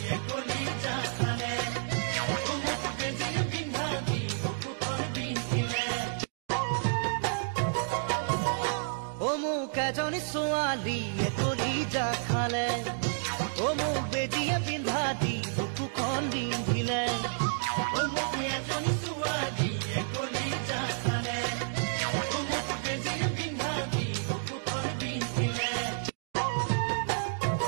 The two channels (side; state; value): left; silent; digital silence